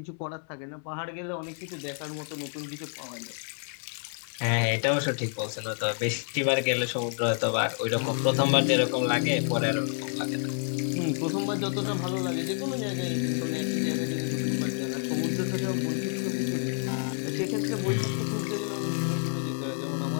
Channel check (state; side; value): silent; right; 55 dB below the other